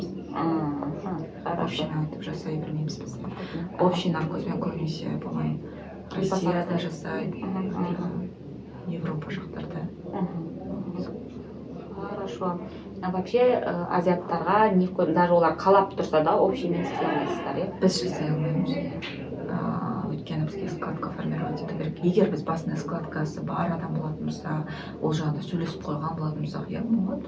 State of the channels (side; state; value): both; identical; correlation 1.00